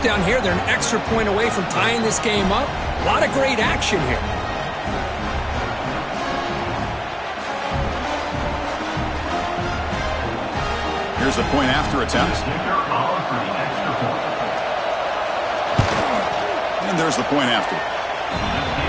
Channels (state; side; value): identical; both; correlation 1.00